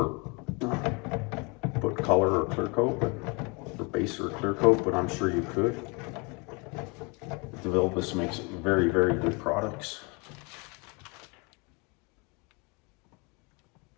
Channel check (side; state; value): right; quieter; 30.4 dB